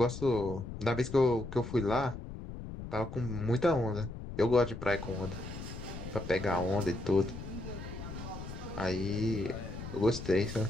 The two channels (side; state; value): left; noise; rumble, 9 dB below the sound